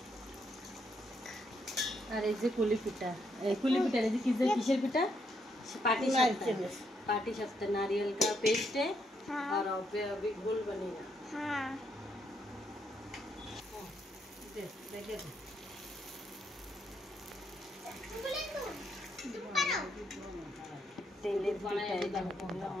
अरे जे कुली पिठा रे किसर पिठा पाटी शफ्ता नारियल का पेस्ट है। हाँ। और अभी घोल बनेगा। हाँ दे दे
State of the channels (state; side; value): normal; both; correlation 0.76